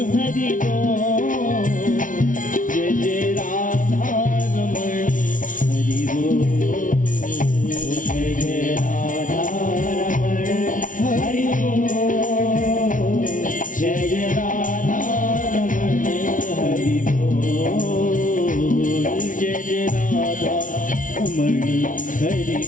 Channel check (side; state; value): right; late; 0.38 ms